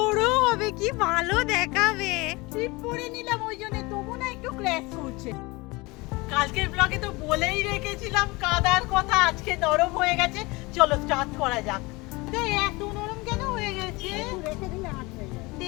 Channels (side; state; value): right; quieter; 23.9 dB